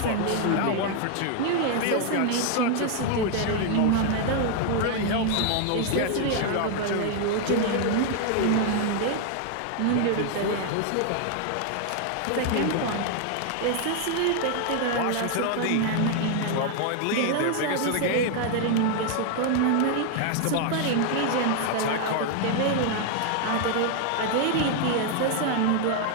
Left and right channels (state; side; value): different; both; correlation 0.00